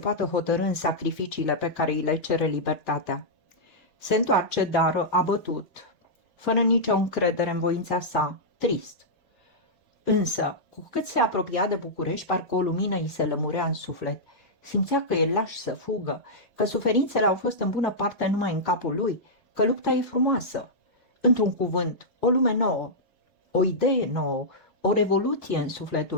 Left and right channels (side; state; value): right; late; 2.0 ms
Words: hotărî în sacrificiile pe care îi le cere libertatea. Se întoarce, dar abătut, fără nicio încredere în voința sa, trist. Însă, cu cât se apropia de București, parcă o lumină îi se lămurea în suflet. Simțea că e laș să fugă, că suferințele au fost în bună parte numai în capul lui, că lupta e frumoasă. Într-un cuvânt, o lume nouă, o idee nouă, o revoluție în